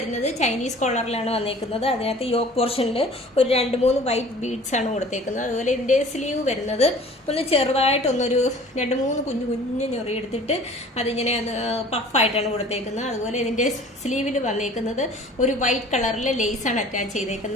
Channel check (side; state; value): both; normal; correlation 0.47